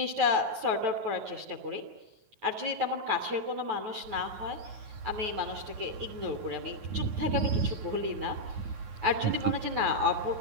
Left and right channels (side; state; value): left; late; 9.4 ms